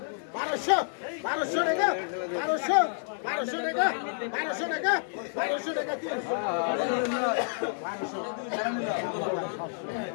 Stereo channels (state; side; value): silent; right; digital silence